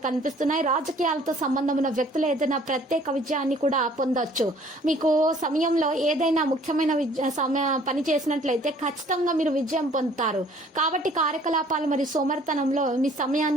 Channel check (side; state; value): both; normal; correlation 0.56